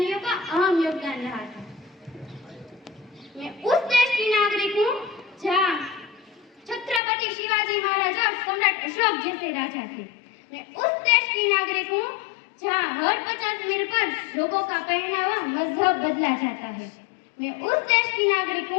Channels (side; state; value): right; drops out; at 7.0 s